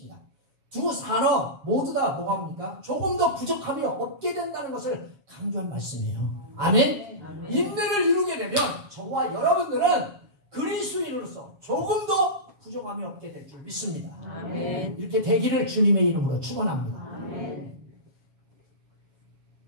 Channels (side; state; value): left; late; 7.3 ms